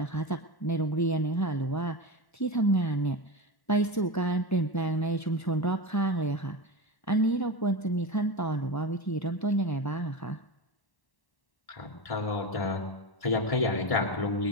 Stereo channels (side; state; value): right; late; 1.1 ms